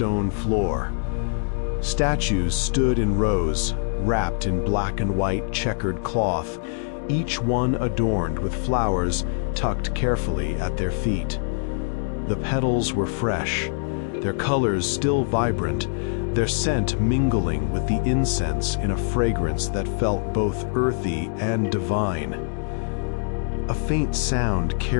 floor. Statues stood in rows, wrapped in black and white checkered cloth, each one adorned with flowers tucked carefully at their feet. The petals were fresh, their colors still vibrant, their scent mingling with the incense in a fragrance that felt both earthy and divine. A faint sound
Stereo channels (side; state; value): right; silent; digital silence